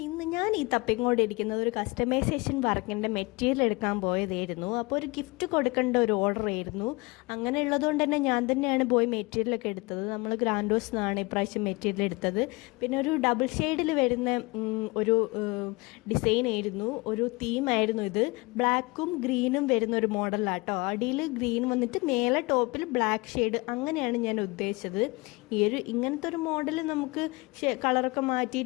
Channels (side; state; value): right; quieter; 25.1 dB